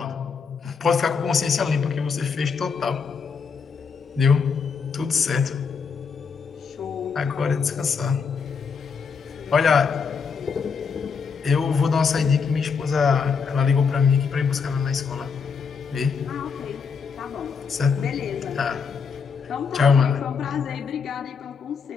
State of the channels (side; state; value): right; quieter; 5.7 dB